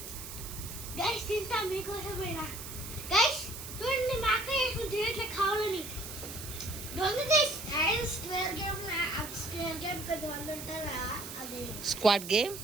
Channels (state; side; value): noise; right; hiss, 10 dB below the sound